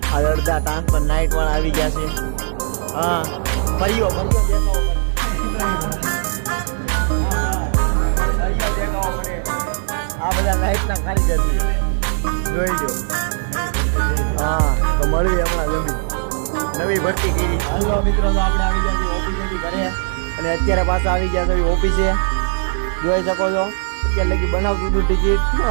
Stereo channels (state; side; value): silent; left; digital silence